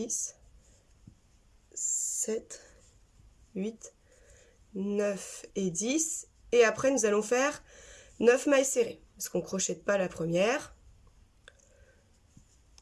7, 8, 9 et 10. Et après, nous allons faire 9 mailles serrées, parce qu'on ne crochette pas la première.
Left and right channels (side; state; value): both; identical; correlation 1.00